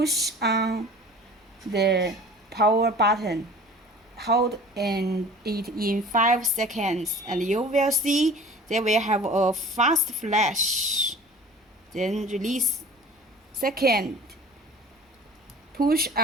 on the power button. Hold it in 5 seconds and you will see they will have a fast flash. Then release. Second, push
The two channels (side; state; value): both; normal; correlation 0.43